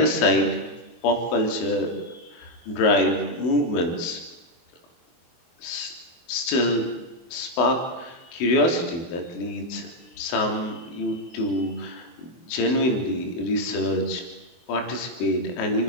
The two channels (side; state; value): right; late; 24 ms